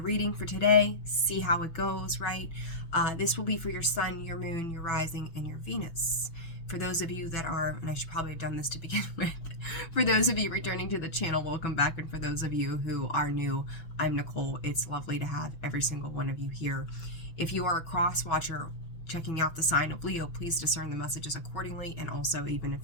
reading for today. See how it goes, right? This will be for your sun, your moon, your rising, and your Venus. For those of you that are, and I should probably have done this to begin with, for those of you returning to the channel, welcome back. And for those of you who are new, I'm Nicole. It's lovely to have every single one of you here. If you are a cross watcher, checking out the sign of Leo, please discern the messages accordingly. And also, even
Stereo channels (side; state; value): right; late; 6.0 ms